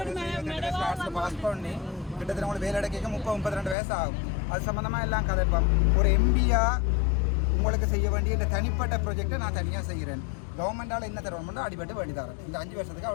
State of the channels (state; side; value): drops out; right; at 3.8 s